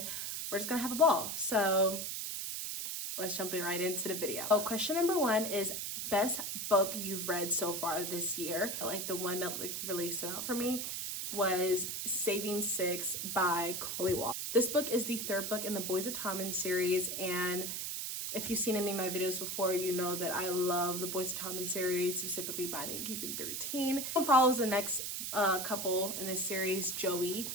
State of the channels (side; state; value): right; noise; hiss, 3 dB below the sound